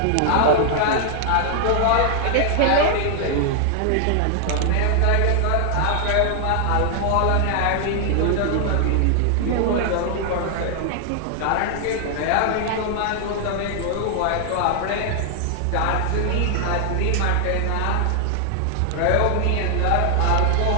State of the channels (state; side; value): different; both; correlation 0.00